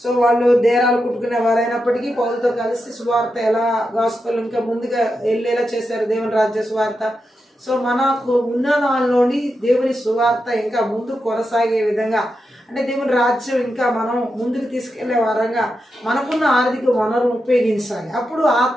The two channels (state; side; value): normal; both; correlation 0.87